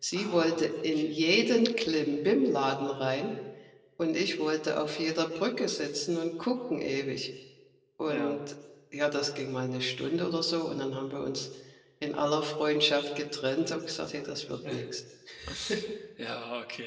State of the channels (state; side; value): identical; both; correlation 1.00